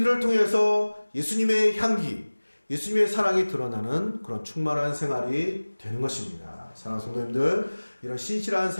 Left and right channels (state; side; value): inverted; both; correlation -1.00